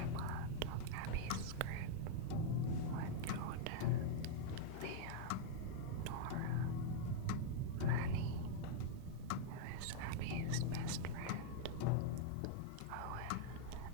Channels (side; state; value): both; different; correlation -0.01